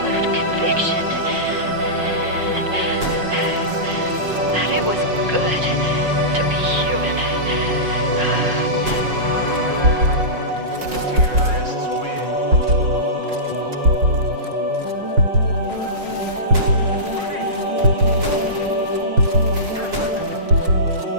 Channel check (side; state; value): left; late; 5.5 ms